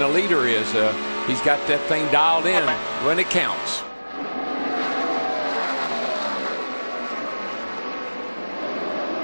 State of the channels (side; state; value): both; inverted; correlation -1.00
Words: leader is. He's got that thing dialed in when it counts.